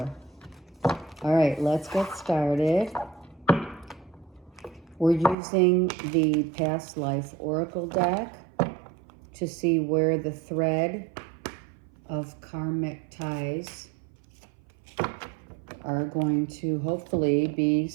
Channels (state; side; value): drops out; left; at 5.4 s